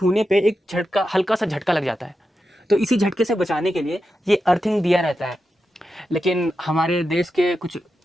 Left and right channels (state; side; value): normal; both; correlation 0.89